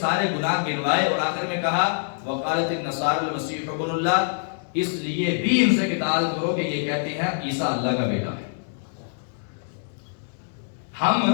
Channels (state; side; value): silent; right; digital silence